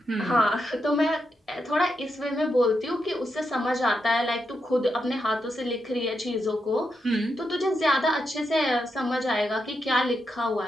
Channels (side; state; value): both; normal; correlation 0.84